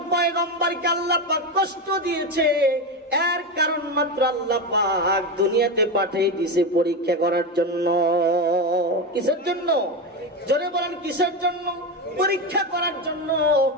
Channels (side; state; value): both; normal; correlation 0.16